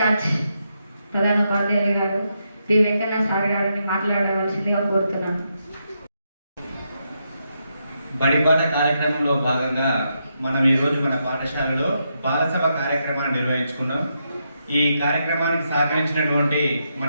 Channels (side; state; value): both; inverted; correlation -0.82